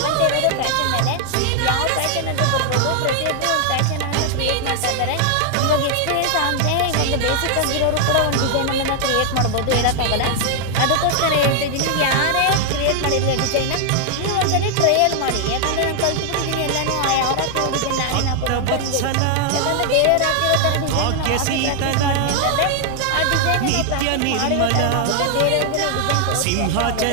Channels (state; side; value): different; both; correlation 0.00